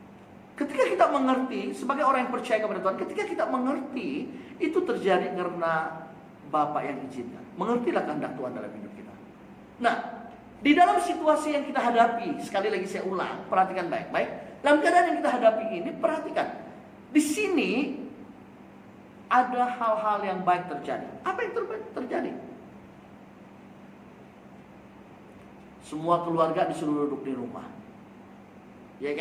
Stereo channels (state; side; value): identical; both; correlation 1.00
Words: Ketika kita mengerti, sebagai orang yang percaya kepada Tuhan, ketika kita mengerti, itu terjadi karena Bapa yang izinkan. Mengertilah kehendak Tuhan dalam hidup kita. Nah, di dalam situasi yang kita hadapi, sekali lagi saya ulang, perhatikan baik-baik. Dalam keadaan yang kita hadapi ini, perhatikan. Di sini ada hal-hal yang baik terjadi. Apa yang terjadi? Semua keluarga disuruh duduk di rumah. Ya